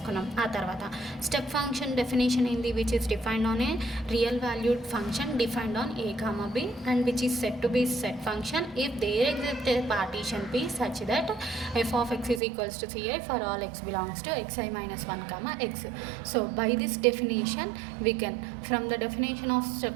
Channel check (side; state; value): left; drops out; at 12.4 s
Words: ఆ తర్వాత స్టెప్ ఫంక్షన్ డెఫినేషన్ ఏంది, which is defined on a real valued function defined on a, b and which is said to be set function if there exists a partition p such that f of x is equals to ci for all x belongs to xi minus 1 x. So by this definition we can, from the definition of